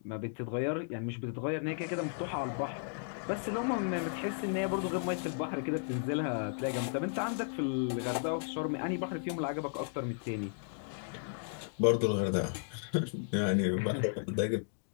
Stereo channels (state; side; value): silent; right; digital silence